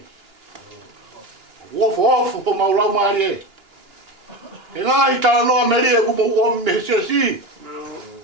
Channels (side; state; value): left; late; 2.9 ms